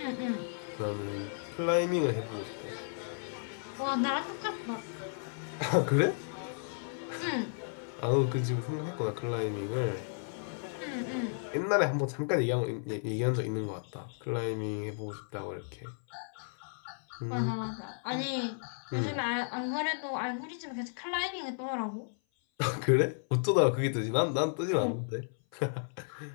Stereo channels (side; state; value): right; silent; 55 dB below the other